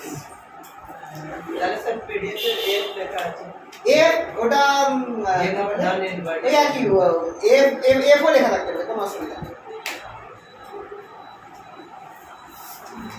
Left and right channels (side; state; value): both; identical; correlation 1.00